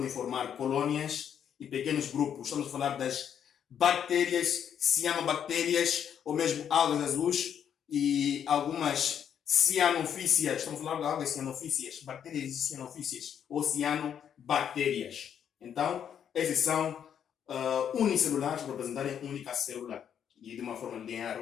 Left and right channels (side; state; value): right; quieter; 8.7 dB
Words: formar colônias e pequenos grupos. Estamos a falar das bactérias, cianobactérias, ou mesmo algas azuis e algumas cianofícias. Estamos a falar de algas cianofícias, bactérias cianofícias ou cianobactérias. Então, esses são unicelulares para representarem única célula e de uma forma linear